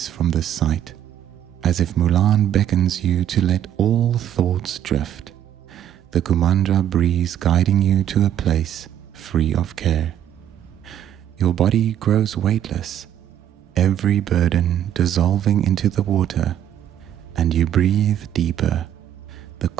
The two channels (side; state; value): left; quieter; 10.5 dB